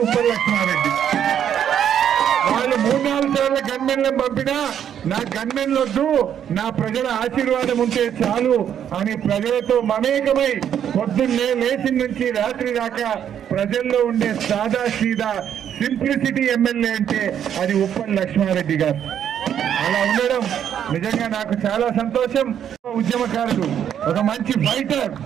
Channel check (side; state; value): left; quieter; 9.3 dB